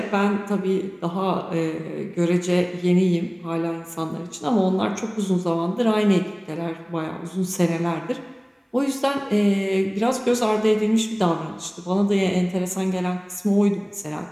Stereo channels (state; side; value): identical; both; correlation 1.00